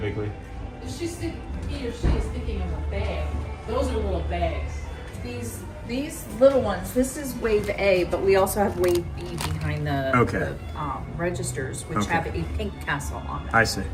he or she is thinking of a bag. Those are little bags. These little ones. This is wave A, but we also have wave B behind the registers, which have a pink tassel on it. I see.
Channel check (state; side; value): identical; both; correlation 1.00